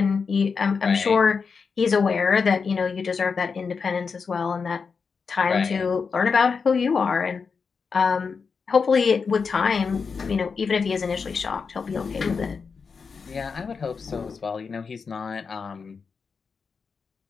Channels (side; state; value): right; quieter; 5.4 dB